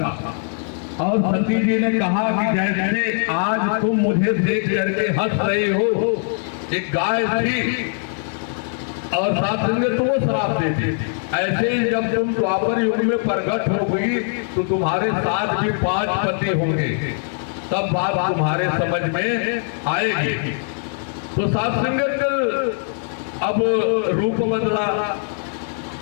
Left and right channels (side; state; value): right; silent; 65 dB below the other